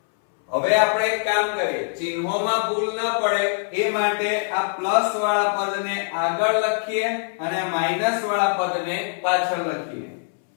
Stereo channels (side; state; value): right; silent; 63 dB below the other